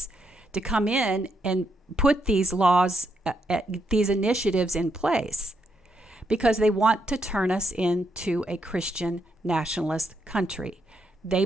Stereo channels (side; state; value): both; normal; correlation 0.79